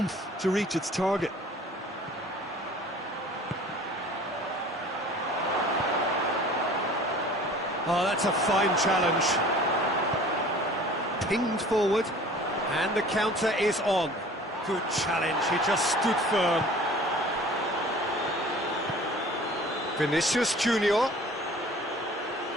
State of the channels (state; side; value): normal; both; correlation 0.46